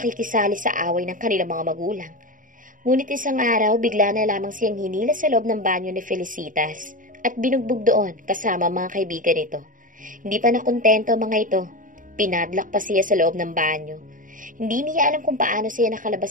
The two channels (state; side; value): late; left; 0.39 ms